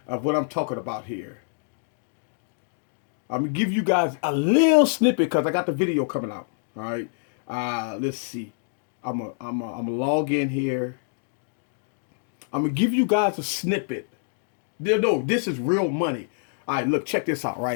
of what I'm talking about here. I'm going to give you guys a little snippet because I got the video coming out, all right. Let's see. I'm gonna log in here. I'm gonna give you guys a snippet. No, this is real money. All right, look, check this out,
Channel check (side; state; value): right; silent; digital silence